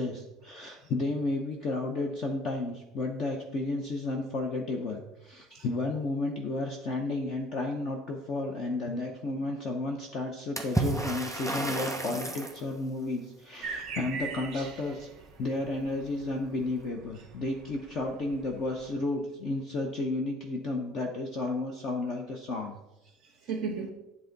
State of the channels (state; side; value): normal; both; correlation 0.57